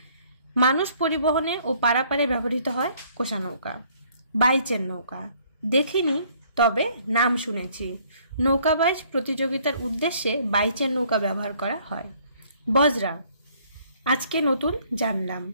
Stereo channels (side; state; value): both; inverted; correlation -0.61